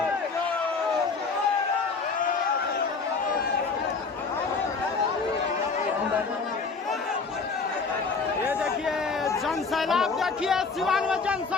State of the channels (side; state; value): right; quieter; 4.7 dB